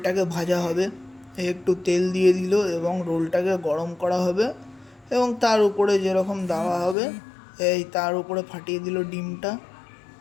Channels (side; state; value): right; drops out; at 7.0 s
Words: ভাজা হবে। একটু তেল দিয়ে দিল এবং রোলটাকে গরম করা হবে এবং তার উপরে যেরকম দেওয়া হবে এই তার উপরে ফাটিয়ে দিল ডিমটা।